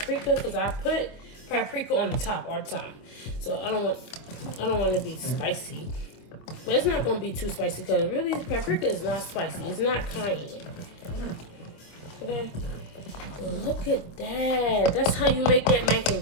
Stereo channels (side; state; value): right; late; 25 ms